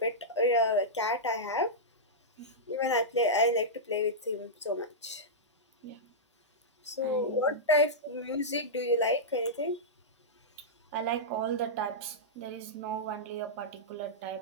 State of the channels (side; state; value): both; normal; correlation -0.11